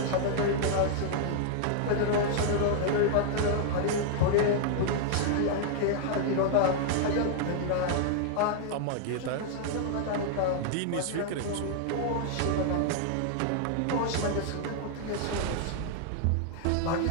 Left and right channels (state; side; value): different; both; correlation -0.01